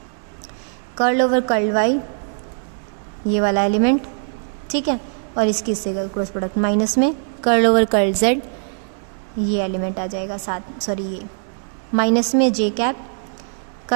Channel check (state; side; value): silent; left; 65 dB below the other